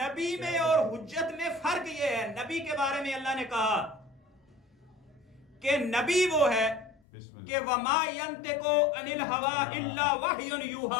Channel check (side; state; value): right; drops out; at 7.0 s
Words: میں اور حجت میں فرق یہ ہے. نبی کے بارے میں اللہ نے کہا کہ نبی وہ ہے کہ وَمَا يَنْتِقُ عَنِ الْهَوَىٰ إِلَّا وَحْيٌ